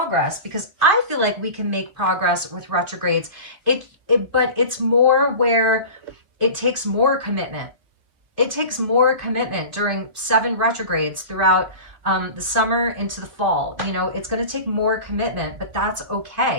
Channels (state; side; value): late; left; 2.6 ms